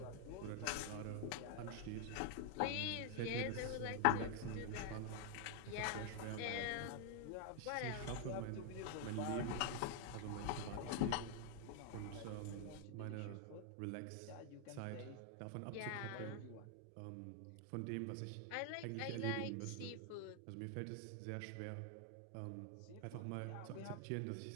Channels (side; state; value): both; different; correlation 0.00